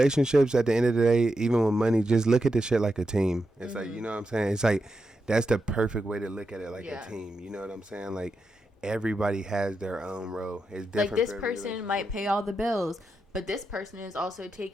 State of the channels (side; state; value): both; normal; correlation 0.87